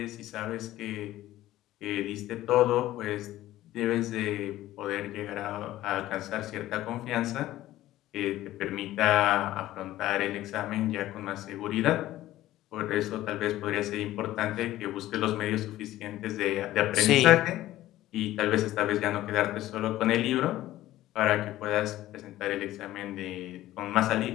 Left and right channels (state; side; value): quieter; right; 15.0 dB